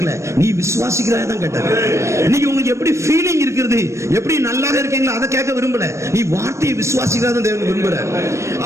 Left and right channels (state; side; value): late; left; 0.14 ms